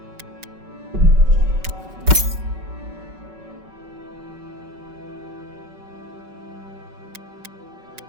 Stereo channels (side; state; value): left; late; 5.3 ms